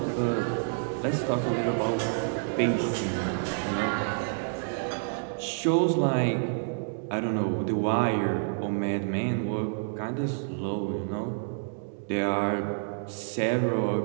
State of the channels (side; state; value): left; silent; digital silence